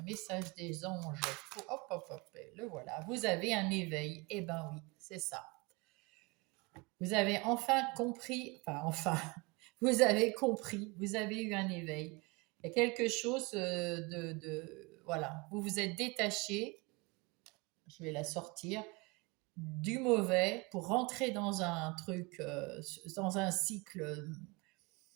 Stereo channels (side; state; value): left; quieter; 26.3 dB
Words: message des anges pour... Hop, hop, hop, le voilà. Vous avez un éveil. Eh ben oui, c'est ça. Vous avez enfin compris, vous avez compris, vous avez eu un éveil. Il y a quelque chose voilà, vous vous êtes détaché, je vais la sortir, du mauvais pour rentrer dans un truc, dans un cycle